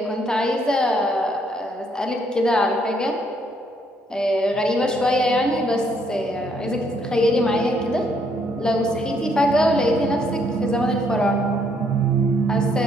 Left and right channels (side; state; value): both; normal; correlation 0.70